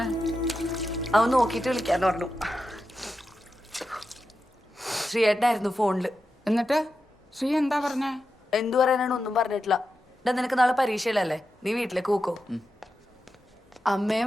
അവൻ നോക്കിയിട്ട് വിളിക്കാന്ന് പറഞ്ഞു. ശ്രീയേട്ടനായിരുന്നു ഫോണില്. എന്നിട്ട് ശ്രീ എന്താ പറഞ്ഞേ? എന്തു പറയാനാണ്, ഒന്നും പറഞ്ഞിട്ടില്ല. ഇതാ നിനക്ക് നാളെ പരീക്ഷയിലല്ലേ, നീ വീട്ടിലേക്ക് പോക്കോ.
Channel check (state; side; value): normal; both; correlation 0.89